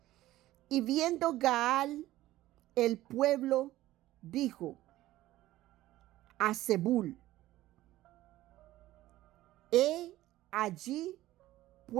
Y viendo Gaal el pueblo, dijo a Zebul: he allí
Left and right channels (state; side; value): quieter; left; 15.7 dB